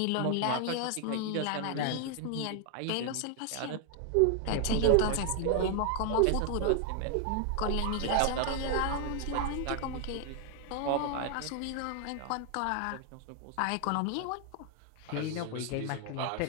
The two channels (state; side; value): different; both; correlation 0.00